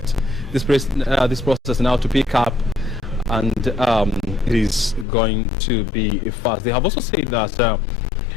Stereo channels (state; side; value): drops out; right; at 5.1 s